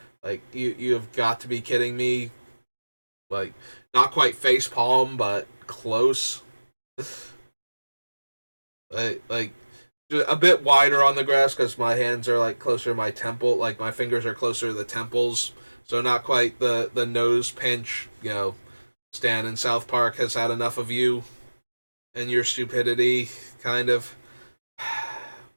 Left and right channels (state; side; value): inverted; both; correlation -1.00